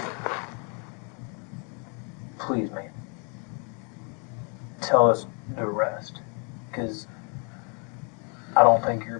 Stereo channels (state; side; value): quieter; right; 36.8 dB